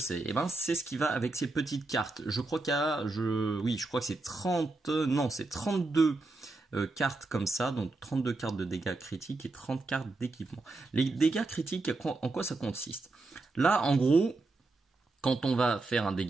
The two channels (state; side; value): quieter; left; 3.3 dB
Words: Eh ben c'est ce qui va avec ces petites cartes. Je crois qu'il y a, je crois que c'est 32 cartes comme ça, donc 32 cartes de dégâts critiques et 30 cartes d'équipement. Les dégâts critiques, en quoi ça consiste? Là en gros, quand on va faire un